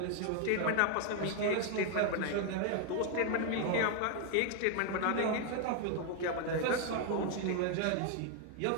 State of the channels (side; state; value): both; different; correlation 0.01